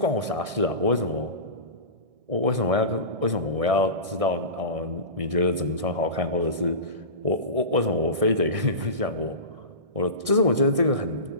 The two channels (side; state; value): left; late; 1.6 ms